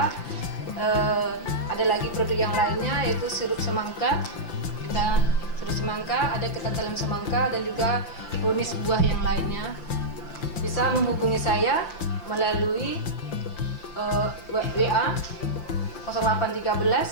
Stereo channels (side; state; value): right; late; 5.8 ms